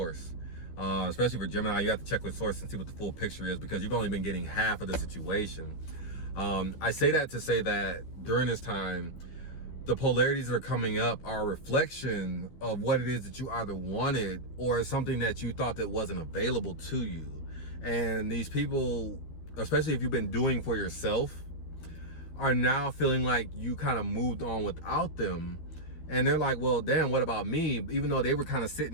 Especially for Gemini, you have to check with source and see what the full picture is, because you've only been getting half of the situation. I say that to say that during this time, the polarities that are coming up are a reflection of what it is that you either wanted or something that you thought that wasn't available to you. And these people, especially if you've been doing for yourself, are now feeling like you kind of moved on without them. And they're like, well, damn, what about me? Even though they were kind of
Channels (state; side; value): late; right; 13 ms